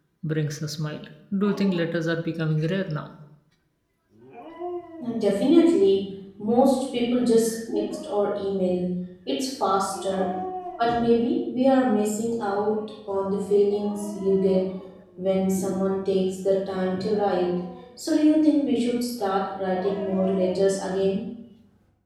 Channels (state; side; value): identical; both; correlation 1.00